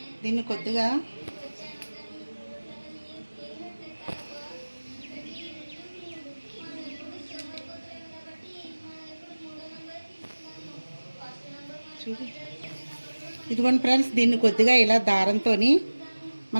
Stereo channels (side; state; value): both; inverted; correlation -1.00